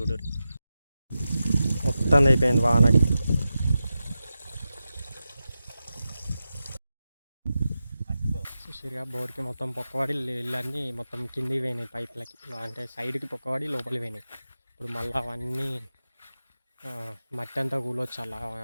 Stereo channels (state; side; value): inverted; both; correlation -0.92